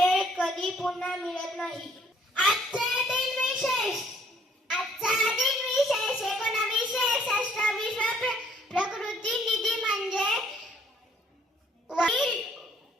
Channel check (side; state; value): both; normal; correlation 0.63